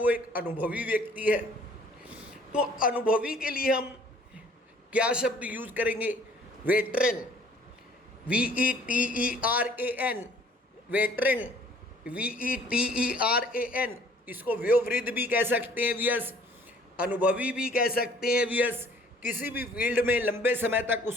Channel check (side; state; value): both; normal; correlation 0.55